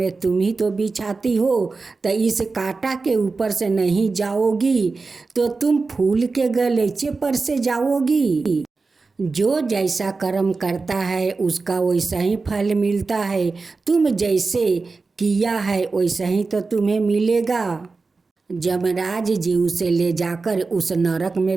तुम ही तो बिछाती हो। तो इस कांटा के ऊपर से नहीं जाओगी तो तुम फूल के गलीचे पर से जाओगी। जो जैसा कर्म करता है उसका वैसा ही फल मिलता है। तुम जैसे किया है वैसा ही तो तुम्हें मिलेगा। यमराज जी उसे ले जाकर उस नरक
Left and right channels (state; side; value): quieter; left; 4.1 dB